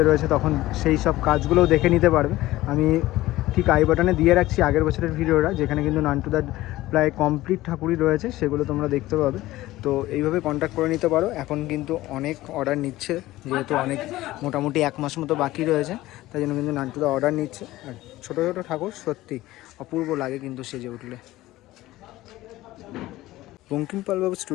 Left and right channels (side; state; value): right; quieter; 16.9 dB